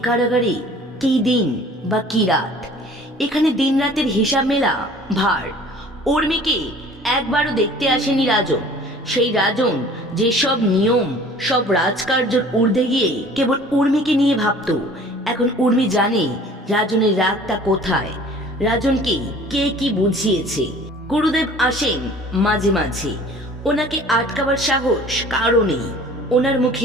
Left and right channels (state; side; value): normal; both; correlation 0.48